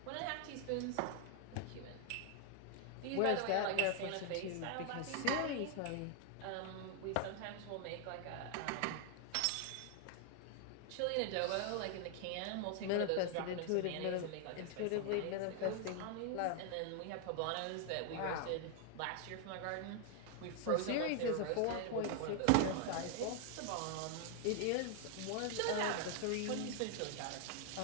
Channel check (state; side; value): different; both; correlation 0.00